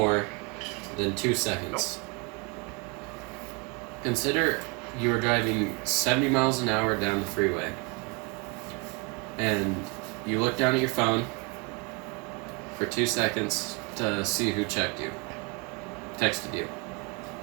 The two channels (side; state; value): left; quieter; 29.7 dB